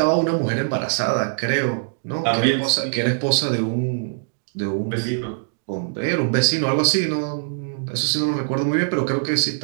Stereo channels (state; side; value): silent; left; digital silence